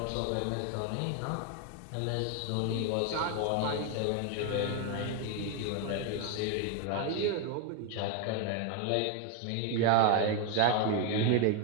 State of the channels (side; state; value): both; different; correlation 0.01